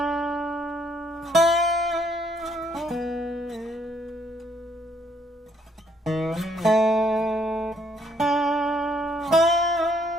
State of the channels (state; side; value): normal; both; correlation 0.68